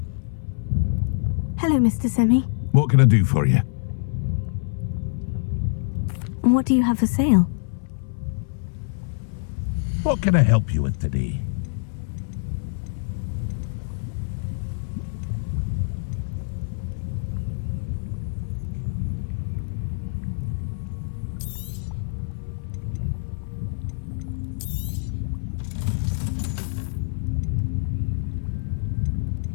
Hello, Mr. Semi. What can I do for you? What do you have for sale? What can I help you with today?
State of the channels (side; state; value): right; silent; 62 dB below the other